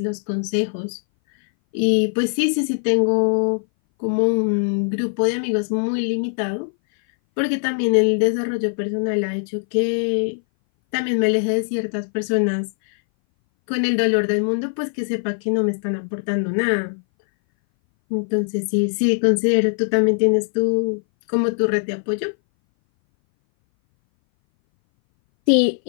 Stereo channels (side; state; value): right; silent; 60 dB below the other